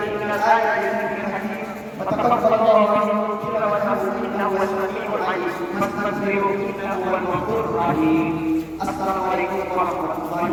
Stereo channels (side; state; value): both; identical; correlation 1.00